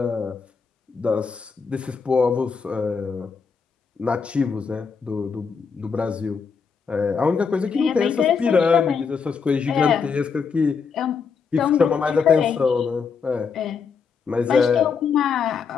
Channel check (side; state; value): right; quieter; 5.7 dB